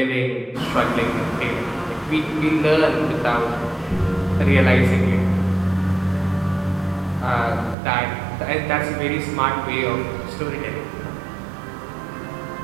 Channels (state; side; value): drops out; left; at 7.8 s